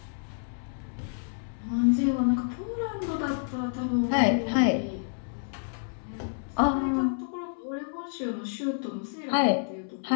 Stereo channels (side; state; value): right; silent; 59 dB below the other